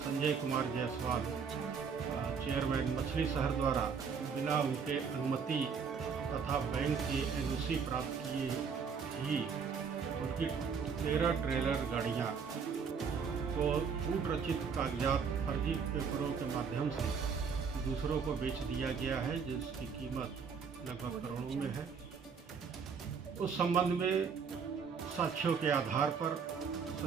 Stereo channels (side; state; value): left; quieter; 6.1 dB